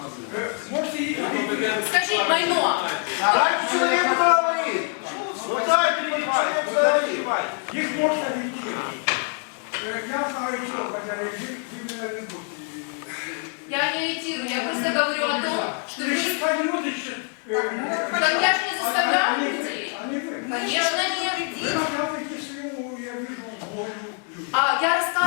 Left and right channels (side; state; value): right; quieter; 39.9 dB